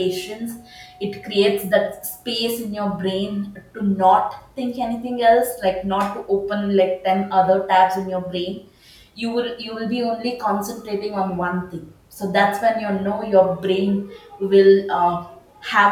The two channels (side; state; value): both; identical; correlation 1.00